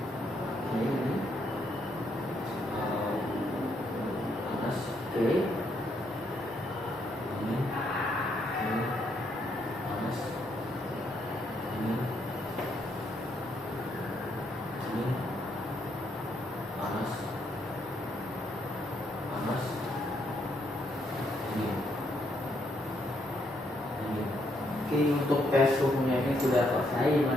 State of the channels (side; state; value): both; normal; correlation 0.74